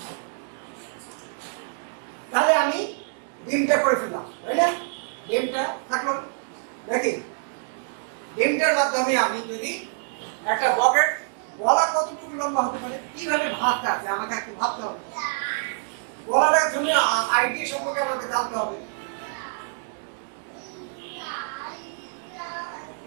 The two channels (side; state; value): left; silent; digital silence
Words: তাহলে আমি ডিমটা করে ফেললাম, তাই না? ডিমটা থাকলো নাকি? ডিমটার মাধ্যমে আমি যদি একটা বকেট, গলা কতটুকু লম্বা হতে পারে, কিভাবে ভাবতে আছে আমাকে একটু ভাবতে হবে। গলাটার জন্য আইডিয়া সম্পর্কে আমাকে জানতে হবে।